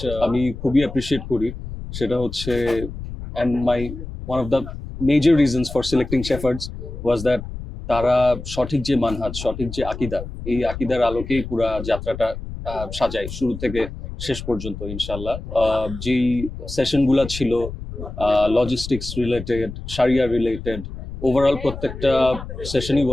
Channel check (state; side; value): noise; left; rumble, 10 dB below the sound